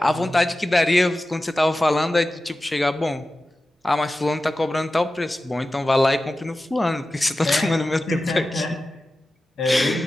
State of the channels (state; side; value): normal; both; correlation 0.94